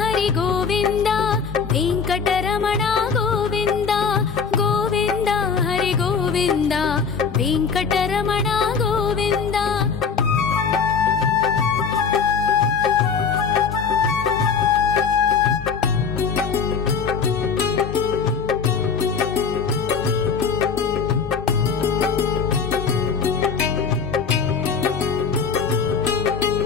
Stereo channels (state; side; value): quieter; right; 5.9 dB